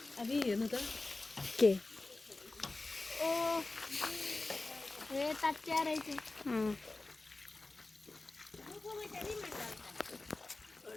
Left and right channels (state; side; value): quieter; right; 3.2 dB